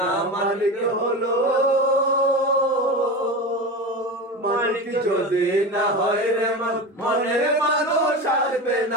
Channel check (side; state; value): both; normal; correlation 0.25